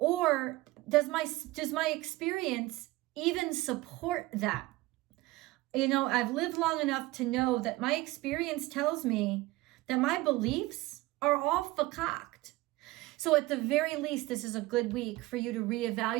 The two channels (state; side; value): quieter; left; 19.7 dB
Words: does my experience even support that? I've lived long enough to know that my experience tells me that my beliefs are all fakaked. So at the very least, this is a good week for you to